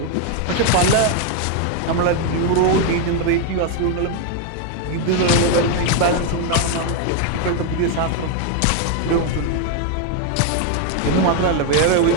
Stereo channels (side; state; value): both; different; correlation 0.01